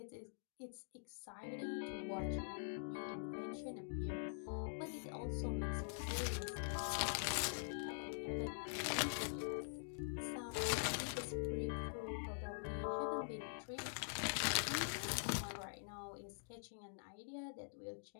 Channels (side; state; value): right; silent; digital silence